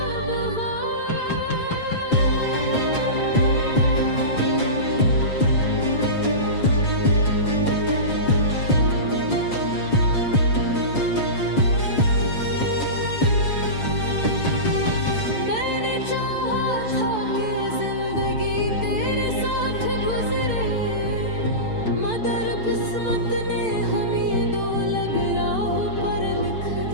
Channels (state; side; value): late; right; 6.8 ms